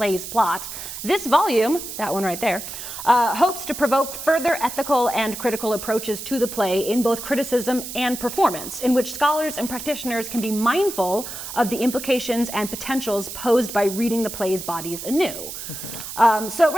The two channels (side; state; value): right; noise; hiss, 9 dB below the sound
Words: plot, this volume, that one right there, hopes to provoke further ethical and critical approaches to the play in both criticism and performance, in which scholars and practitioners can be mindful of the implications and potentials posed by reading the play's bodies anew. So